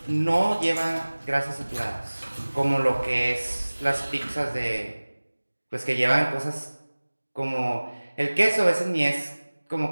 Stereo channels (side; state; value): both; inverted; correlation -1.00